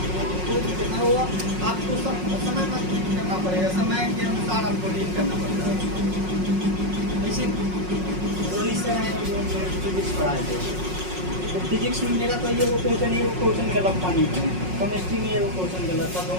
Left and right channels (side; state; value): left; late; 5.5 ms